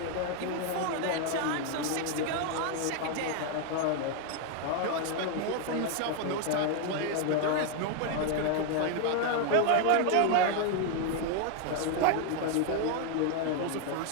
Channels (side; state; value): both; different; correlation 0.00